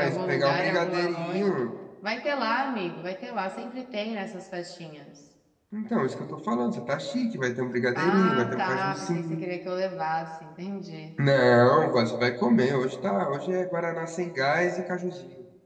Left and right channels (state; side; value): identical; both; correlation 1.00